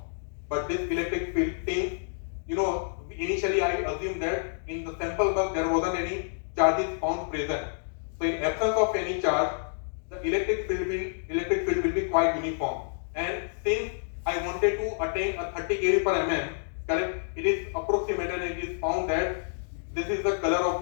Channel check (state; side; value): silent; right; digital silence